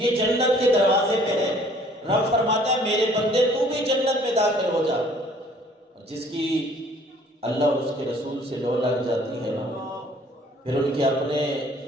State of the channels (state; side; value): normal; both; correlation 0.57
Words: جنت کے دروازے پہ ہے. رب فرماتا ہے میرے بندے تو بھی جنت میں داخل ہو جا. جس کی اللہ اور اس کے رسول سے لو لگ جاتی ہے نا، پھر ان کے اپنے